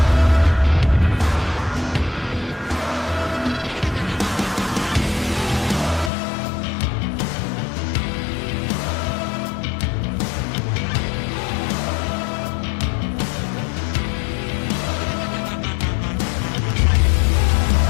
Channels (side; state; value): right; drops out; at 6.1 s